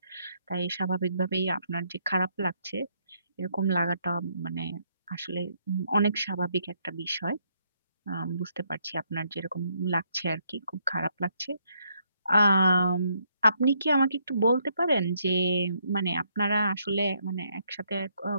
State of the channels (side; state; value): both; inverted; correlation -0.73